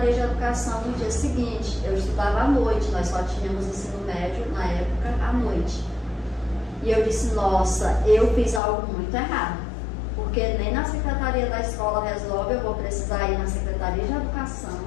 de Educação no dia seguinte. Eu estudava à noite, nós só tínhamos ensino médio na época à noite. E eu disse, nossa, eu fiz algo muito errado, porque nem na Secretaria da Escola resolve, eu vou precisar ir na Secretaria de Educação.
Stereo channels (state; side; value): drops out; right; at 8.6 s